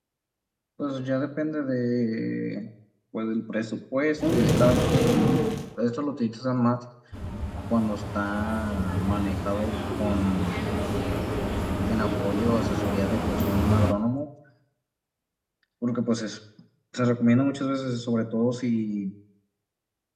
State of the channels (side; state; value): both; identical; correlation 1.00